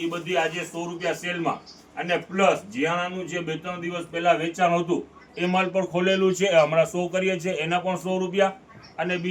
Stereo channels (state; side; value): identical; both; correlation 1.00